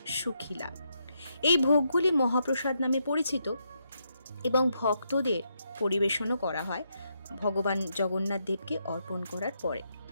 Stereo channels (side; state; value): both; inverted; correlation -0.80